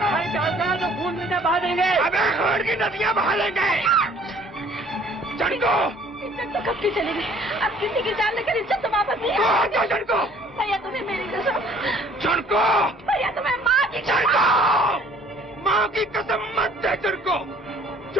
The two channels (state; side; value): normal; both; correlation 0.55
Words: तो खून में बहा देंगे। अबे खून की नदियां बहा लेंगे। जनको, इज्जत तो कब की चली गई। अब किसी की जान लेकर इज्जत तो वापस नहीं आएगी। जनको, भैया तुम्हें मेरी कसम। जनको, भैया तुम्हें माँ की जनको, माँ की कसम मत दे जनको।